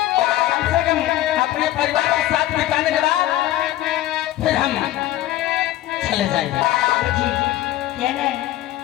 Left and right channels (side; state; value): right; quieter; 14.3 dB